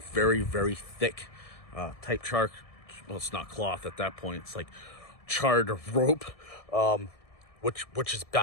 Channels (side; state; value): right; late; 1.7 ms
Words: thick type char. Well, it's not cloth at that point. It's like charred rope, which is